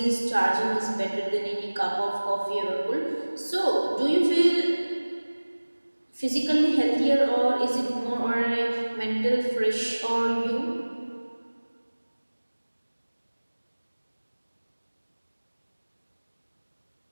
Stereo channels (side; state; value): both; inverted; correlation -1.00